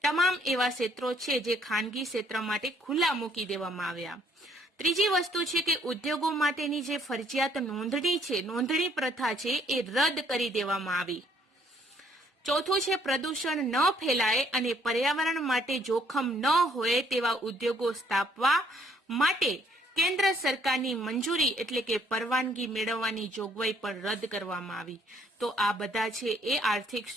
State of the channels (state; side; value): normal; both; correlation 0.65